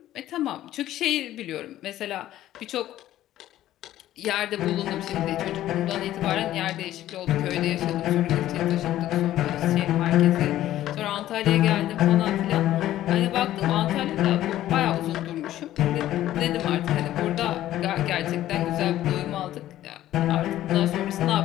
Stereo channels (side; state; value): right; quieter; 13.5 dB